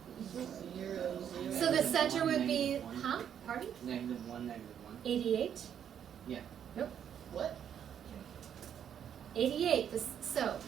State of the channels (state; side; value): quieter; left; 8.9 dB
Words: 0, 0. So the center would be, -1. huh? Pardon? -1, -1. 88? Yeah. Nope. What? 88. So